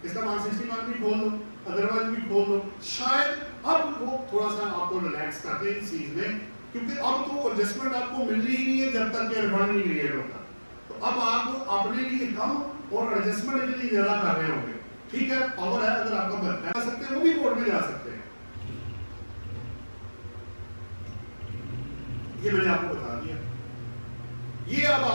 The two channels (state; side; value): inverted; both; correlation -1.00